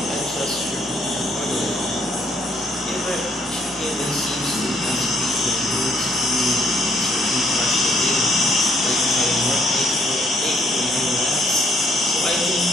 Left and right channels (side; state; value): both; normal; correlation 0.68